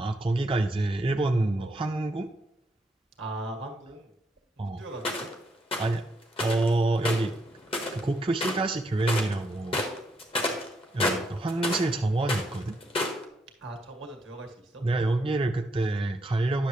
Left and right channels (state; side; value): normal; both; correlation 0.77